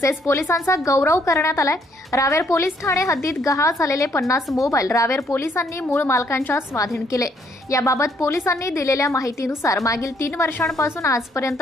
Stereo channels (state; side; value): normal; both; correlation 0.69